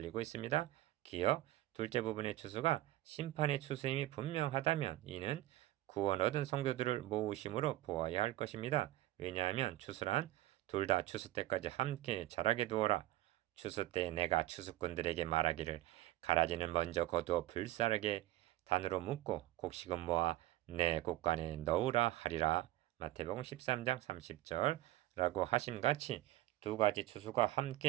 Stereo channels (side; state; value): left; quieter; 15.9 dB